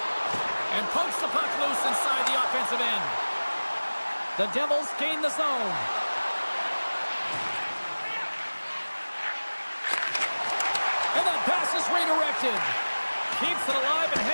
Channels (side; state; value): both; inverted; correlation -1.00